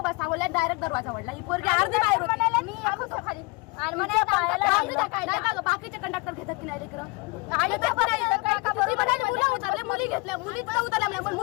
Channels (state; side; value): quieter; right; 27.4 dB